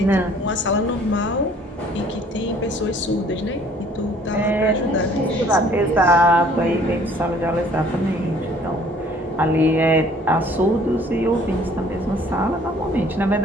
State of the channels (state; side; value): normal; both; correlation 0.56